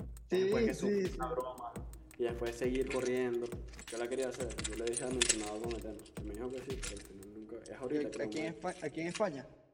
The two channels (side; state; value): both; identical; correlation 1.00